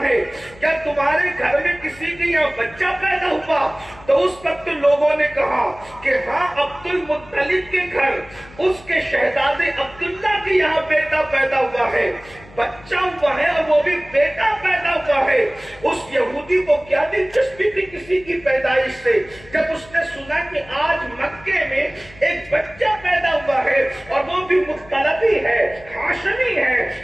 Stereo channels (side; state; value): left; noise; hum, 22 dB below the sound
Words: ہے کیا تمہارے گھر میں کسی کے یہاں بچہ پیدا ہوا، تو اس وقت لوگوں نے کہا کہ ہاں عبد المطلب کے گھر اس کے شہزادے عبداللہ کے یہاں بیٹا پیدا ہوا ہے، بچہ ہوا ہے اور وہ بھی بیٹا پیدا ہوا ہے۔ اس یہودی کو کیا دلچسپی تھی کسی کی پیدائش سے؟ جب اس نے سنا کہ آج مکے میں ایک بچہ پیدا ہوا ہے اور وہ بھی مختلفی ہے، ہاشمی ہے،